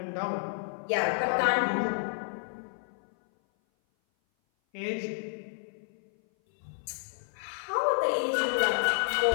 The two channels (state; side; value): silent; right; 56 dB below the other